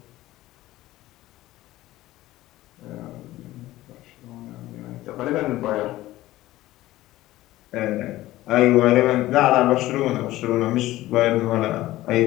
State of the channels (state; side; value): quieter; right; 16.3 dB